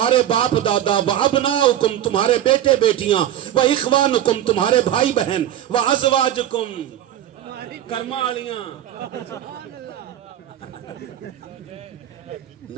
باپ دادا, و ابناؤکم تمہارے بیٹے بیٹیاں, و اخوانکم تمہارے بھائی بہن, و ازواجکم کرمالیاں,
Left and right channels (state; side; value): quieter; left; 11.7 dB